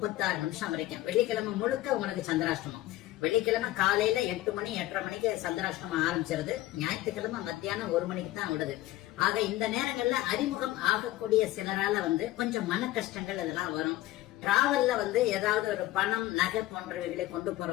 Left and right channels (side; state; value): right; quieter; 16.3 dB